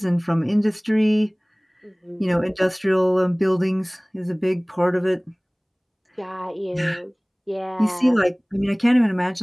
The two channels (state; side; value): identical; both; correlation 1.00